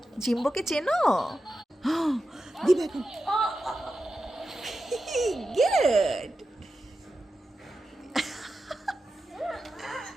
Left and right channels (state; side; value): normal; both; correlation 0.90